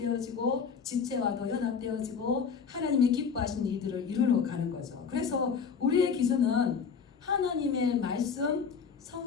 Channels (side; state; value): right; quieter; 6.2 dB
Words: 지체와도 연합되어지고 하나님이 기뻐하시는 이들을 이루러 가는 거죠. 그래서 우리의 기준은 하나님의 말씀,